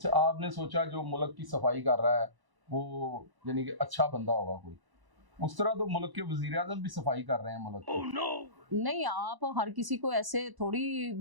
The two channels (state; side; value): late; left; 1.0 ms